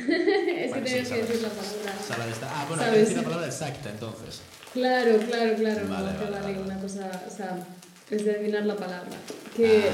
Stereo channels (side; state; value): both; identical; correlation 1.00